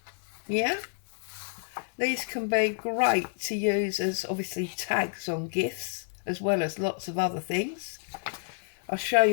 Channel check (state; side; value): silent; right; 58 dB below the other